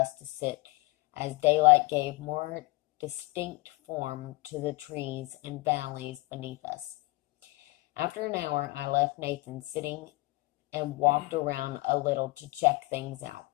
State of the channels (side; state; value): right; quieter; 22.8 dB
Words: to sit, as daylight gave more distinct form to the trees and valleys beneath us. After an hour, I left Nathan sitting and walked around a little to check things out.